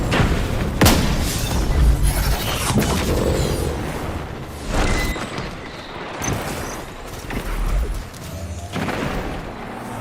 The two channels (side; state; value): both; identical; correlation 1.00